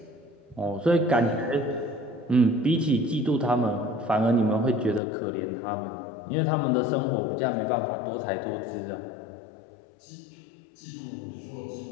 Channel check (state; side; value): drops out; right; at 5.0 s